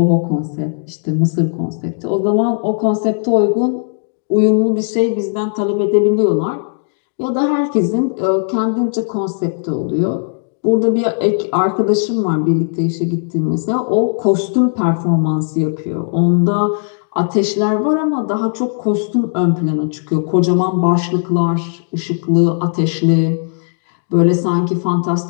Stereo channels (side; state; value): right; silent; digital silence